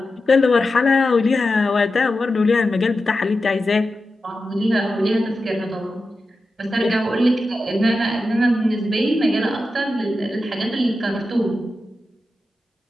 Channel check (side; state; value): both; normal; correlation 0.91